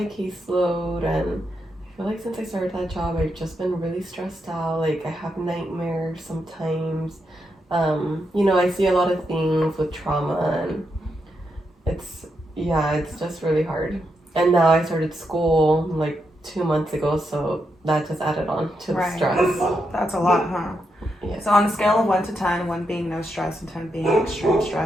caseload. And I feel like since I started that job, I've just been really stressed out. Like, I have nightmares sometimes. I see a lot of things with trauma, and it's just really hard. And now I started school like 2 months ago, so that just added on to the stress. That's a lot, huh? Yes. So on a scale of 1 to 10, 1 being no stress and 10 being extreme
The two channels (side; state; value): both; normal; correlation 0.83